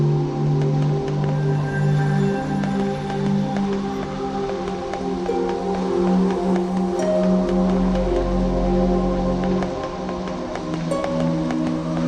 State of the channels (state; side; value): identical; both; correlation 1.00